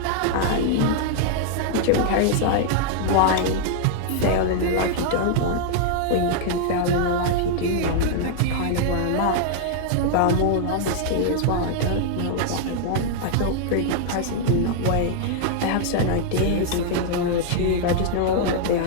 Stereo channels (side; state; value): both; different; correlation 0.00